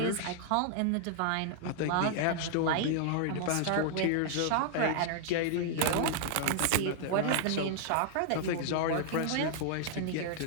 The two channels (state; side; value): different; both; correlation -0.01